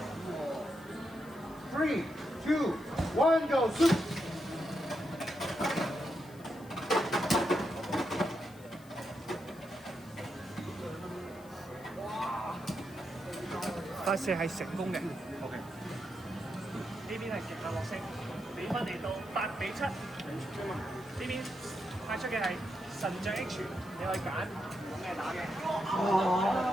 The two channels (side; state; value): left; noise; hiss, 24 dB below the sound